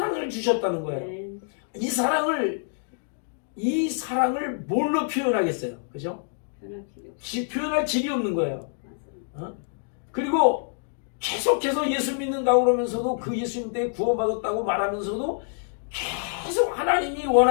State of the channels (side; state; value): right; silent; digital silence